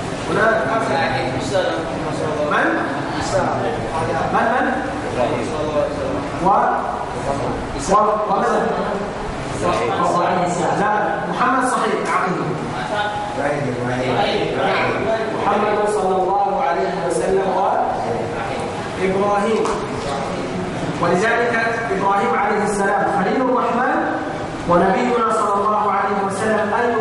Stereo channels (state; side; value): identical; both; correlation 1.00